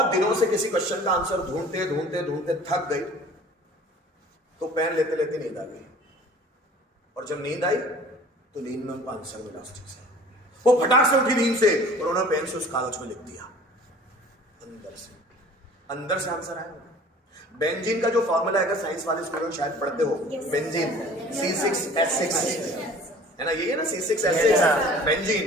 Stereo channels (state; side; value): normal; both; correlation 0.47